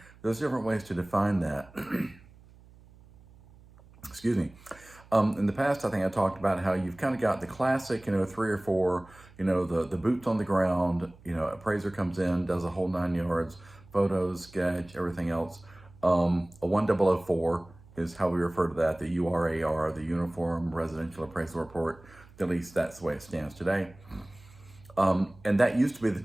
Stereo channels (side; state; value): right; noise; hum, 24 dB below the sound